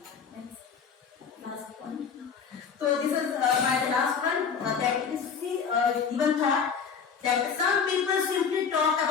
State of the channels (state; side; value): quieter; right; 6.4 dB